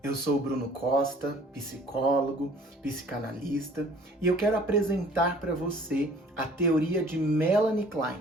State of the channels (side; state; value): both; normal; correlation 0.53